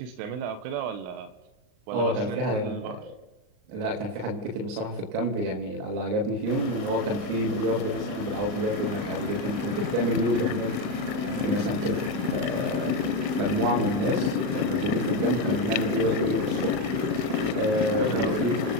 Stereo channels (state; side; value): late; left; 39 ms